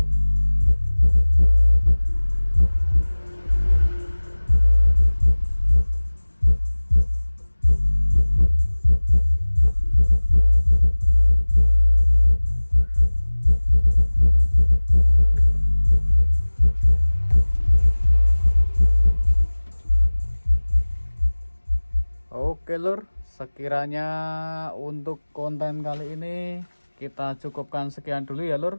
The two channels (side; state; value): both; inverted; correlation -1.00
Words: Oke lur, sekiranya untuk konten kali ini kita cukupkan sekian dulu ya lur.